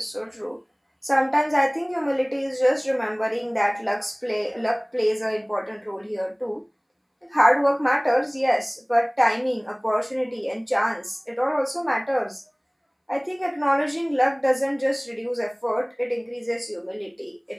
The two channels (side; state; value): both; identical; correlation 1.00